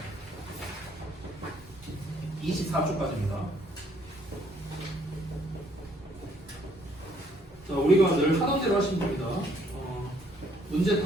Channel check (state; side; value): normal; both; correlation 0.65